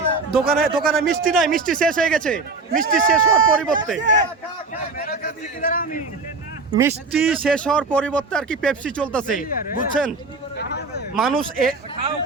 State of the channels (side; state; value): left; quieter; 3.8 dB